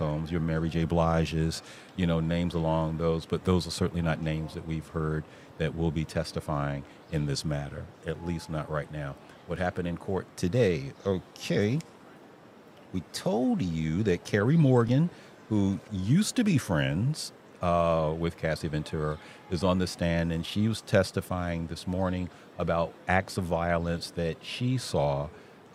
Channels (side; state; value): both; identical; correlation 1.00